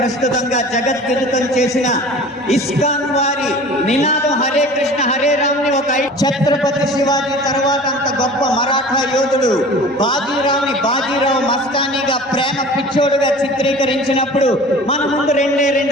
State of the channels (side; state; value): both; normal; correlation 0.41